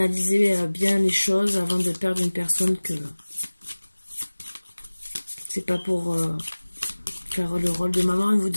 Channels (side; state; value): both; inverted; correlation -1.00